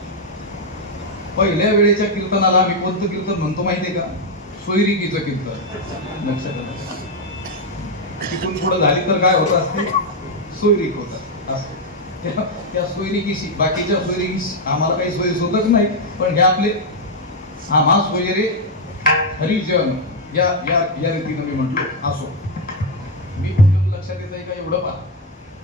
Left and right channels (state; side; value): normal; both; correlation 0.02